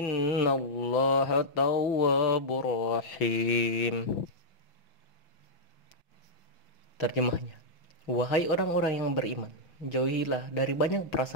tawwabur rahim. Terjemahnya, wahai orang-orang yang beriman, jauhilah dari banyak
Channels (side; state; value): right; late; 6.0 ms